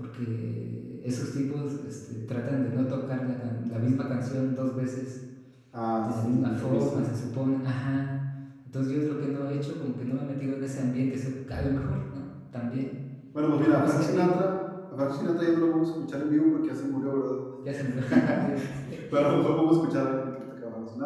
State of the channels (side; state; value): both; identical; correlation 1.00